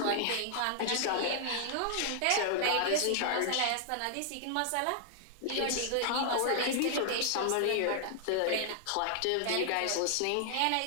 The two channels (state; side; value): different; both; correlation -0.01